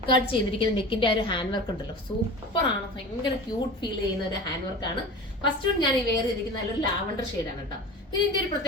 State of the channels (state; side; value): normal; both; correlation 0.34